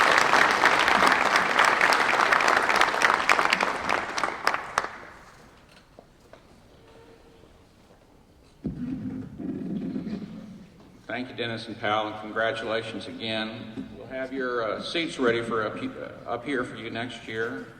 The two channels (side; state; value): both; identical; correlation 1.00